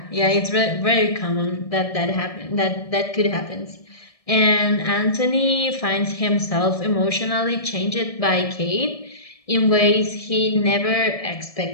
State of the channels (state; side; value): late; right; 1.7 ms